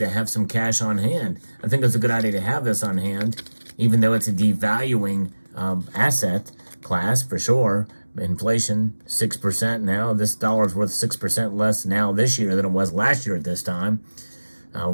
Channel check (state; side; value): inverted; both; correlation -1.00